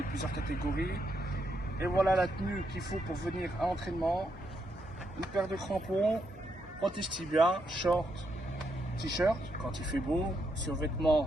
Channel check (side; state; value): both; normal; correlation 0.79